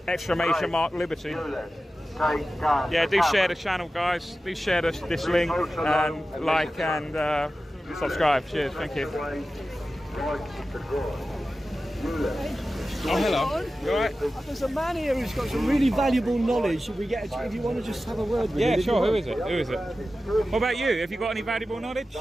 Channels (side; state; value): both; normal; correlation 0.94